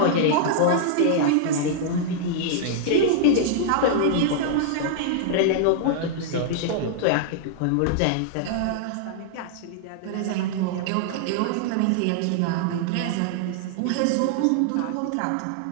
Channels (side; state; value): both; different; correlation -0.01